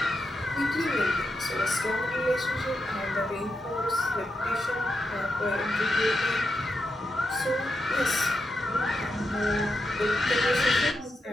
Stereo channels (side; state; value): both; normal; correlation 0.86